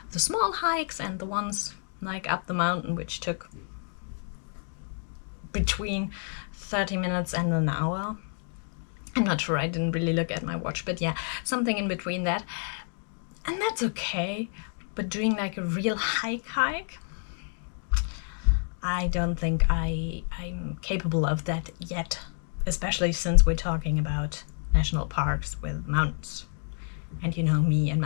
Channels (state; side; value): silent; right; 56 dB below the other